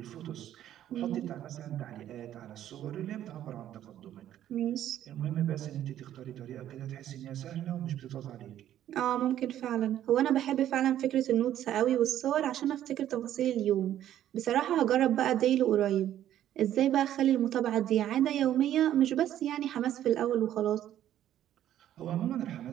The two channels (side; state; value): left; quieter; 11.7 dB